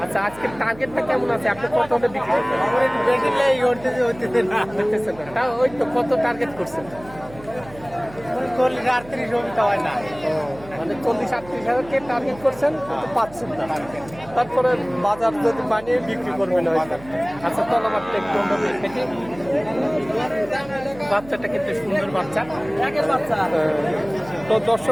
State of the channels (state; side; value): noise; right; hum, 19 dB below the sound